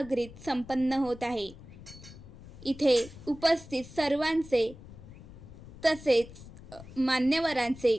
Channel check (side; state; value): left; noise; rumble, 17 dB below the sound